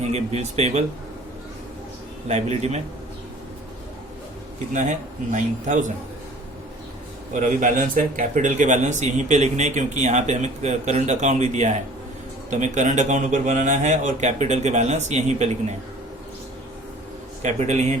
बिल्स पेएबल। लाइबिलिटी में कितना है 9,000, और अभी बैलेंस है कैपिटल के बैलेंस यहीं पे लिखने हैं क्योंकि यहाँ पे हमें करंट अकाउंट भी दिया है, तो हमें करंट अकाउंट ऊपर बनाना है और कैपिटल के बैलेंस यहीं पे लिखने हैं। कैपिटल यहीं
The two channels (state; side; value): normal; both; correlation 0.48